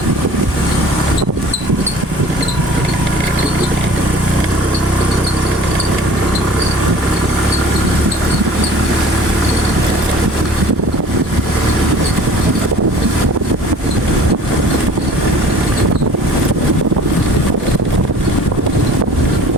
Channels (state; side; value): normal; both; correlation 0.47